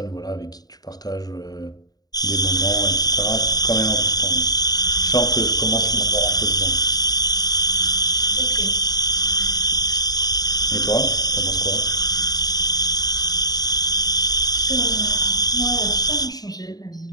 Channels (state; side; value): late; right; 0.19 ms